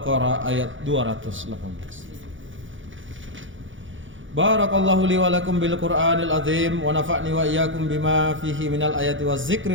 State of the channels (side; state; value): left; late; 0.56 ms